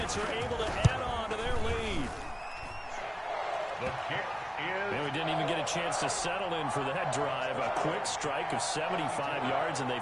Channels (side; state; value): both; identical; correlation 1.00